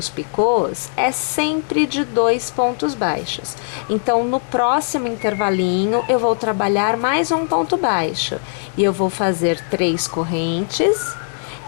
picôs é sempre de 2 pontos baixos. Então, no próximo intervalinho, eu vou trabalhar mais um ponto baixo. E eu vou fazer 3 correntes.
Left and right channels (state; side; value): silent; right; digital silence